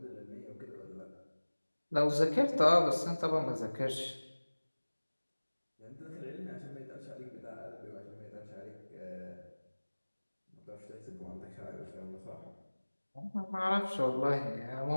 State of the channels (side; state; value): both; inverted; correlation -1.00